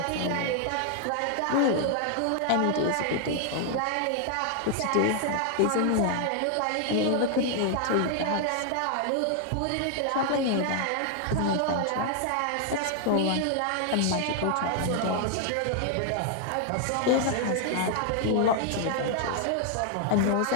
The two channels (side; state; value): both; different; correlation 0.00